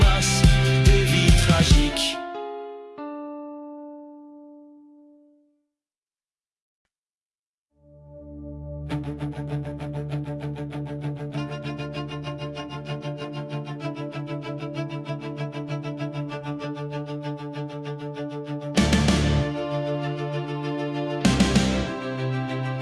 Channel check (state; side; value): identical; both; correlation 1.00